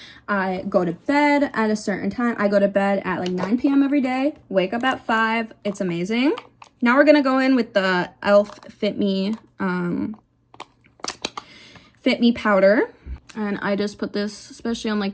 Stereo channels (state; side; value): identical; both; correlation 1.00